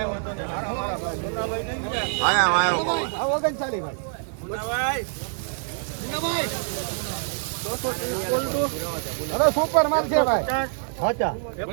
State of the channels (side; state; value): left; silent; 61 dB below the other